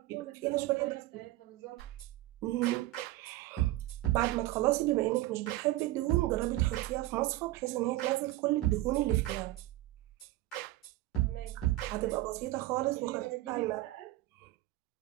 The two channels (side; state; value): left; quieter; 17.4 dB